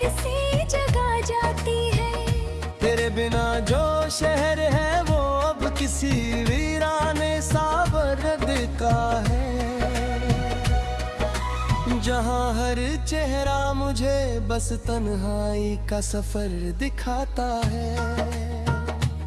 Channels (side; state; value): both; identical; correlation 1.00